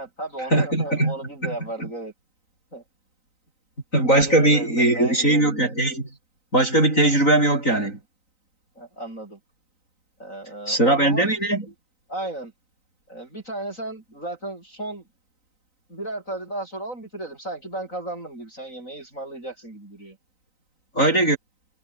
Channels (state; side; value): late; right; 3.9 ms